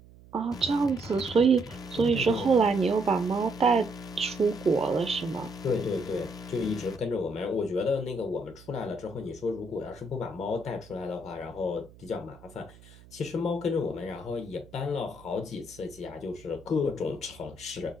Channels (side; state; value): right; noise; hum, 22 dB below the sound